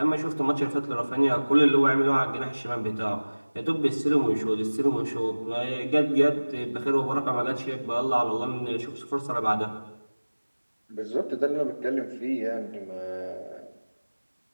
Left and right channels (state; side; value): inverted; both; correlation -1.00